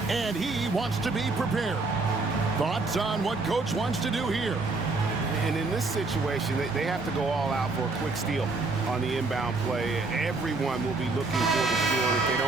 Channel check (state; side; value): quieter; left; 3.6 dB